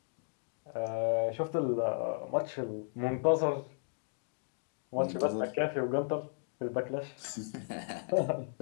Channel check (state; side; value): silent; right; digital silence